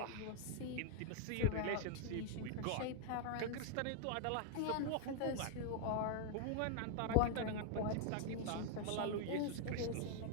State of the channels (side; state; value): both; different; correlation 0.00